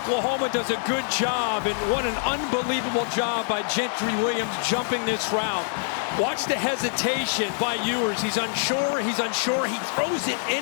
does a good job, and what an unbelievable job by Gentry Williams jumping this route. Watch the hesitation by Ewers. He's unsure, he throws it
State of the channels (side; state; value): right; silent; 62 dB below the other